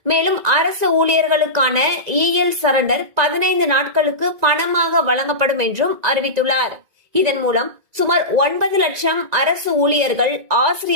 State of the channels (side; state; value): left; late; 1.9 ms